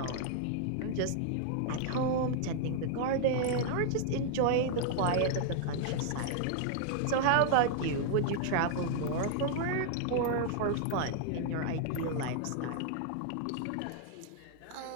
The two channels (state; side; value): different; both; correlation 0.00